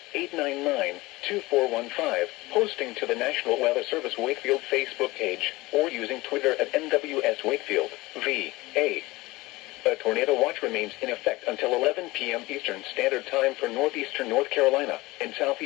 757-899-2415, posting to the National Weather Service Wakefield Facebook page, or using Twitter at NWS Wakefield, VA. A tornado watch remains in effect until 11 p.m. Eastern Standard Time for northeastern North Carolina and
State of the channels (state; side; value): quieter; right; 20.6 dB